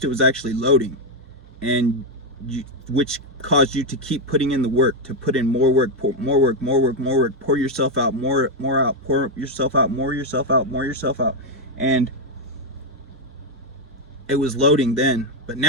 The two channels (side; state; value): both; normal; correlation 0.04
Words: it was actually loading, and which caused you to keep putting in the work, to put in more work, more work, more work, more work, pour yourself out, more out, pour yourself out, more yourself out, more yourself out. And it was loading then, but